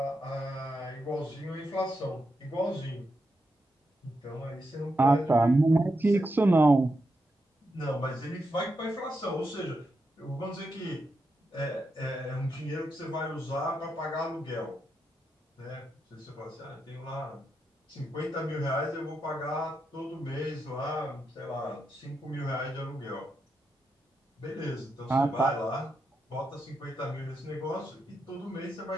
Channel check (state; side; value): normal; both; correlation 0.85